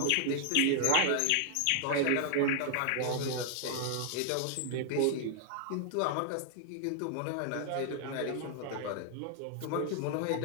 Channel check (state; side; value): different; both; correlation 0.00